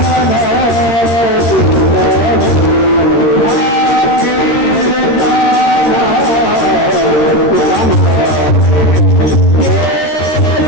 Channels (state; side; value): late; right; 13 ms